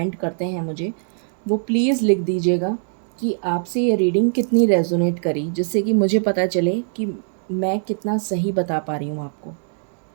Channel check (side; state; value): left; silent; digital silence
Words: करते हैं मुझे, वो प्लीज़ लिख दीजिएगा कि आपसे ये रीडिंग कितनी रेजोनेट करी, जिससे कि मुझे पता चले कि मैं कितना सही बता पा रही हूँ आपको